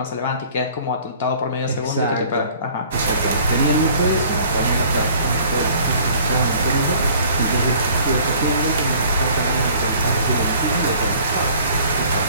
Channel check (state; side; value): inverted; both; correlation -0.53